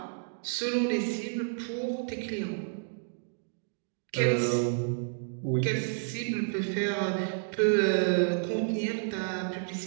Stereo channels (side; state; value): left; silent; digital silence